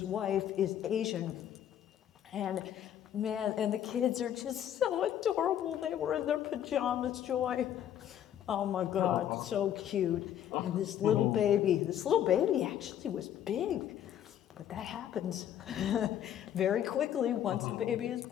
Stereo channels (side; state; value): right; quieter; 10.5 dB